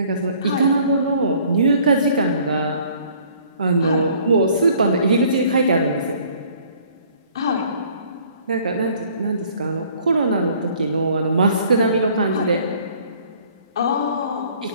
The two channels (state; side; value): inverted; both; correlation -0.57